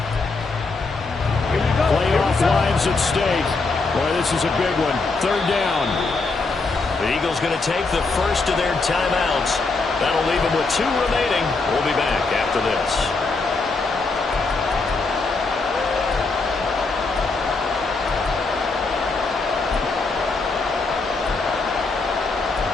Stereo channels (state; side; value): quieter; right; 3.9 dB